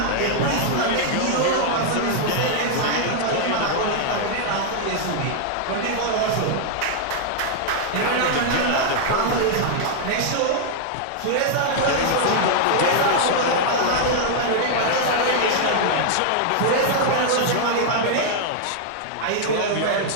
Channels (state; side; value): different; both; correlation -0.01